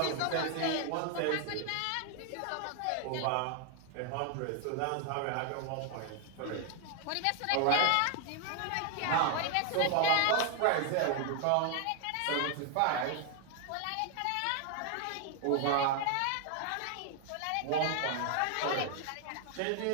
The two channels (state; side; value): different; both; correlation 0.00